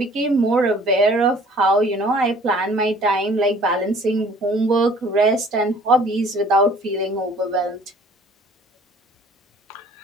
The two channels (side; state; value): both; normal; correlation 0.53